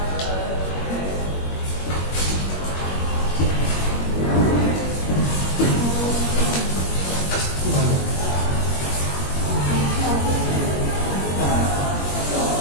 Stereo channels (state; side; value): late; right; 21 ms